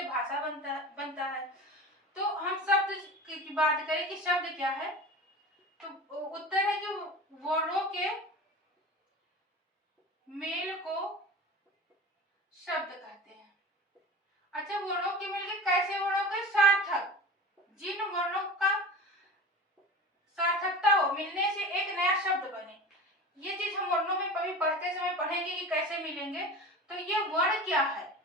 भाषा बनता है। तो हम शब्द की बात करें कि शब्द क्या है, तो उत्तर है कि वर्णों के मेल को शब्द कहते हैं। अच्छा, वर्णों के मेल के कैसे वर्णों के सार्थक, जिन वर्णों का सार्थकता हो, मिलने से एक नया शब्द बने। ये चीज हम वर्णों में कभी पढ़ते समय पढ़ेंगे कि कैसे मिलेंगे। तो ये वर्ण क्या है,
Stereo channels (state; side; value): normal; both; correlation 0.33